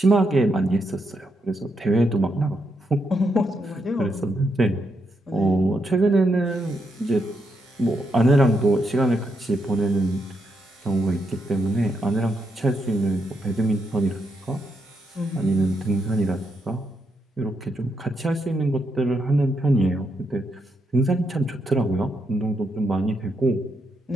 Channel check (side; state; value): both; normal; correlation 0.80